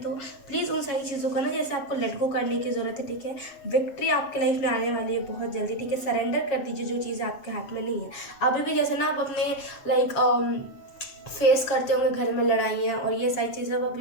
प्लीज़ उन सारी चीज़ों को ना जैसे आपको लेट गो करने की ज़रूरत है, ठीक है। विक्ट्री आपके लाइफ में आने वाली है बहुत जल्दी, ठीक है। सरेंडर कर दीजिए जो चीज़ें आपके हाथ में नहीं है अभी भी। जैसे ना आप अपने लाइक फेस करते होंगे घर में लड़ाइयाँ और ये सारी चीज़ें आप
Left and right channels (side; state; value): right; late; 7.3 ms